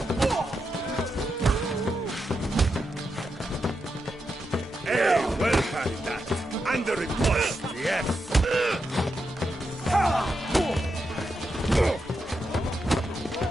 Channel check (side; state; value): both; normal; correlation 0.86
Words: Hey, well parried that. Under it post, yes.